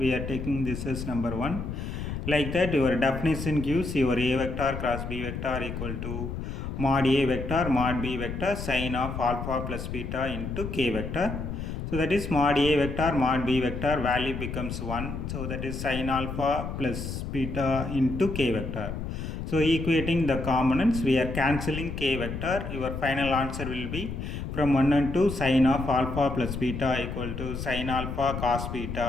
are taking this as number 1. Like that, your definition gives your A vector cross B vector equal to mod A vector mod B vector sin of alpha plus beta into K vector. So that is mod A vector mod B vector value becomes 1. So that is sin alpha plus beta into K vector. So equating the components, we are cancelling K vector. Your final answer will be from 1 and 2 sin of alpha plus beta equal to sin alpha cos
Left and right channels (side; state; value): left; noise; rumble, 6 dB below the sound